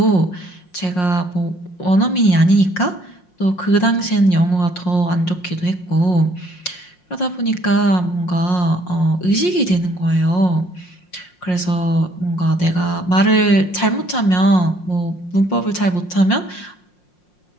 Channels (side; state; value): right; late; 5.6 ms